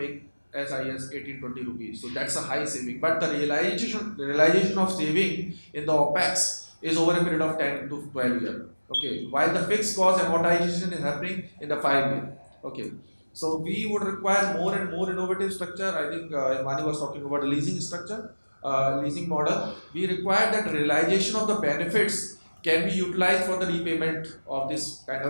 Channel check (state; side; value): inverted; both; correlation -1.00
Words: as high as 18-20 rupees. So that's a high saving. But the realization of saving in the OPEX is over a period of 10 to 12 years. Okay, while the fixed cost amortization is happening in the 5 year. Okay, so we would require more and more innovative structure. I think Imani was talking about a leasing structure, leasing model. We require that realization of the benefits can be utilized for the repayment of this kind